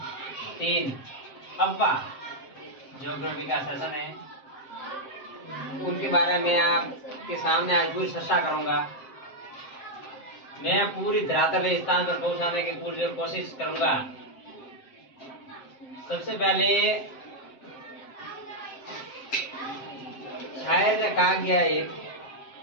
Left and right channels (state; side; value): late; right; 7.6 ms